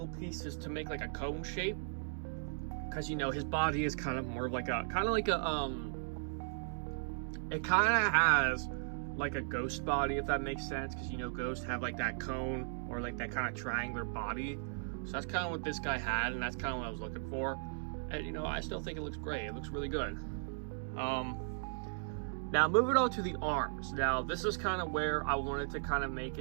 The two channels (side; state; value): left; silent; digital silence